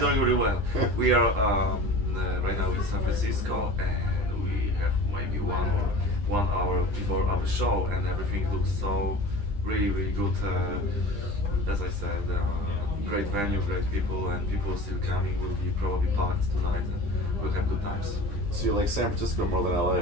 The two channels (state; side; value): late; left; 9.9 ms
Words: doing really well. We are right now in San Francisco, and we have maybe 1 hour before our show, and everything looks so really good. As I said, great venue, great people, and people still coming. Will be probably packed tonight, and we'll have good times. So you like San Francisco more than